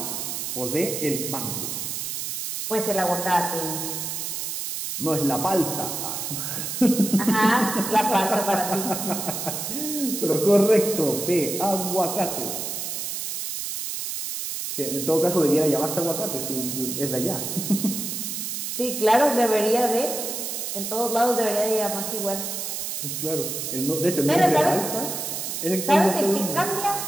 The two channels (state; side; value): noise; right; hiss, 4 dB below the sound